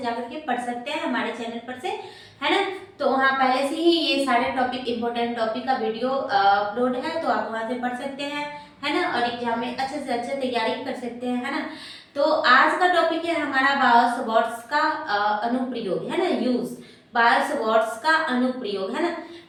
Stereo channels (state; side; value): identical; both; correlation 1.00